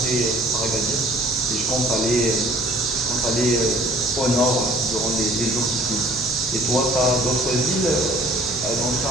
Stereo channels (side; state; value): right; noise; hum, 22 dB below the sound